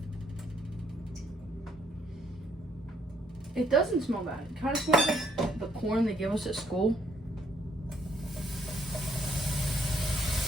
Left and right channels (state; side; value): normal; both; correlation 0.69